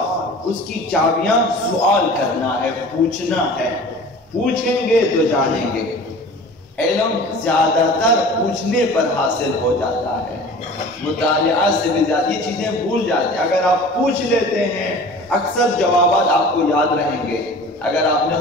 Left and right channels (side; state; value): both; normal; correlation 0.41